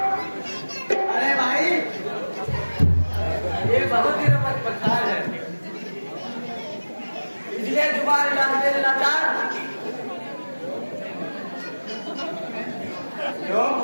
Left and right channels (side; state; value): both; inverted; correlation -1.00